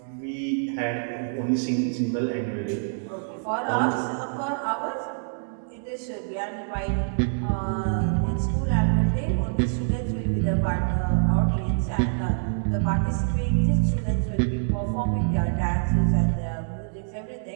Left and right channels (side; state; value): left; silent; digital silence